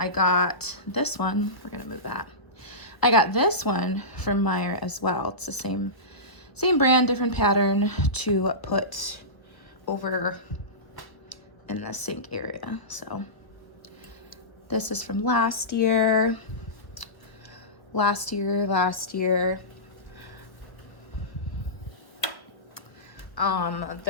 got this one. We're gonna move that. I got this one from Meijer as well. It's the same brand, different pattern, to put over in the sink area. So this is from last year. last year.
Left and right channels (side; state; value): right; late; 1.2 ms